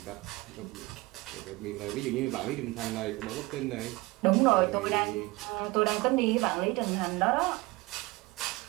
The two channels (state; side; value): quieter; left; 22.0 dB